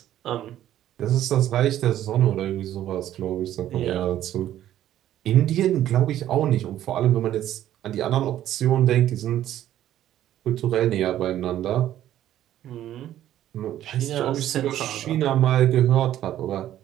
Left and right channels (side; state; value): left; quieter; 12.3 dB